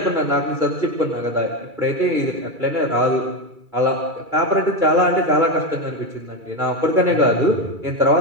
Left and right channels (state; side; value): late; left; 2.3 ms